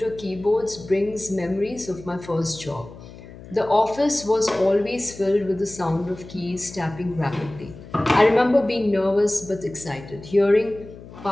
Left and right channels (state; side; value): noise; left; hum, 17 dB below the sound